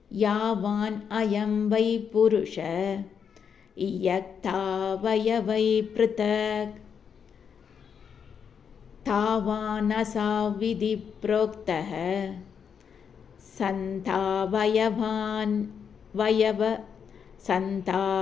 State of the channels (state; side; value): quieter; right; 7.1 dB